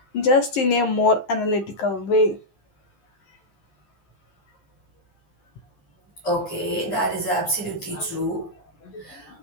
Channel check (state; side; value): late; right; 11 ms